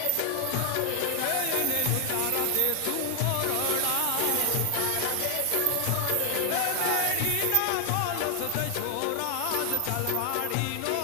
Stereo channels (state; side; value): different; both; correlation 0.00